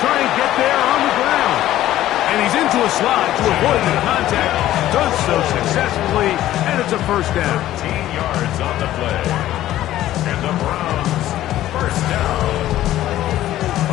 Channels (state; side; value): quieter; right; 13.8 dB